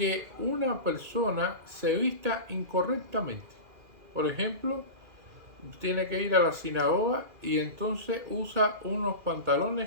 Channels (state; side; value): late; left; 2.4 ms